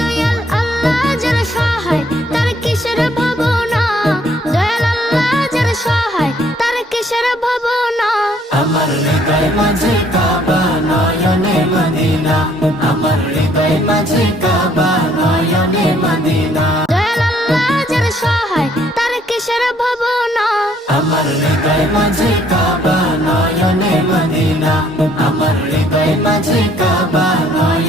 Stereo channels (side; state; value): both; normal; correlation 0.64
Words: আল্লাহ যার সহায় তার কিসের ভাবনা, দয়াল আল্লাহ যার সহায় তার কিসের ভাবনা। আমার হৃদয় মাঝে কাবা নয়নে মদিনা, আমার হৃদয় মাঝে কাবা নয়নে মদিনা। দয়াল আল্লাহ যার সহায় তার কিসের ভাবনা, আমার হৃদয় মাঝে কাবা নয়নে মদিনা, আমার হৃদয় মাঝে কাবা